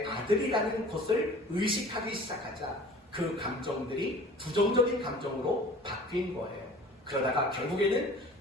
아들이라는 것을 의식하기 시작하자 그 감정들이 부정적인 감정으로 바뀐 거예요. 그러다가 결국에는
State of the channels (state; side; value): normal; both; correlation 0.44